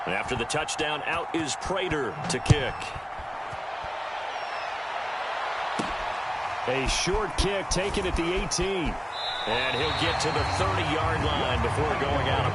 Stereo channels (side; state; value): both; identical; correlation 1.00